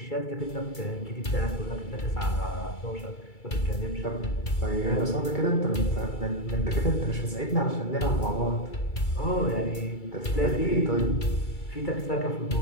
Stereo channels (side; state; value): right; late; 2.3 ms